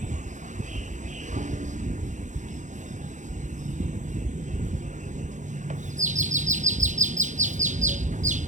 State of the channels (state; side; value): late; left; 0.35 ms